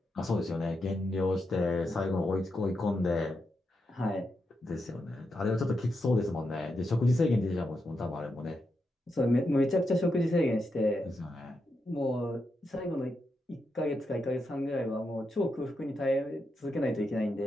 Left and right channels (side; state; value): both; normal; correlation 0.85